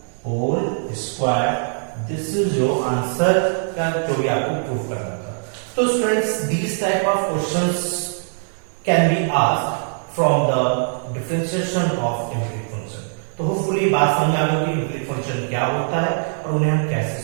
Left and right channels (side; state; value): left; silent; digital silence